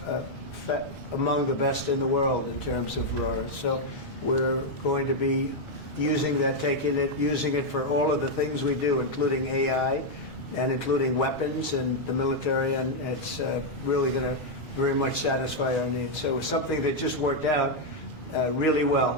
among the best in the world in terms of raw earth. So we're going to be using that, using it for all of the things we do, including AI and including weapons and the military, and it's really going to very much satisfy our needs. So it's something that just worked out really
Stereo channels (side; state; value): both; normal; correlation -0.01